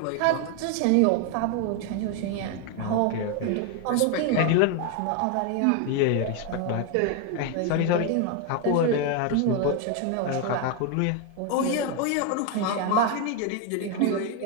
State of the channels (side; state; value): both; different; correlation 0.01